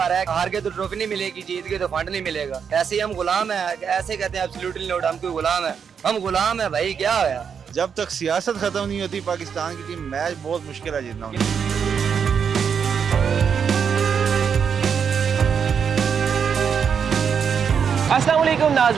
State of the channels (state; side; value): quieter; left; 6.9 dB